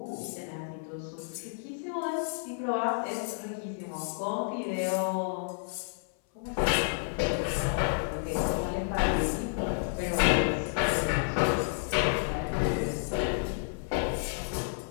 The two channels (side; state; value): right; silent; 57 dB below the other